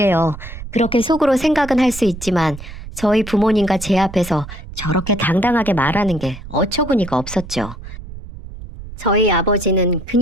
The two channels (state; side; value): noise; right; rumble, 13 dB below the sound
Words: 그렇게 속으로 생각은 할 수 있지만 저희 부모님과 제 앞에서 저렇게 당당하게 말하는 게 어처구니가 없었죠. 저희 아버지는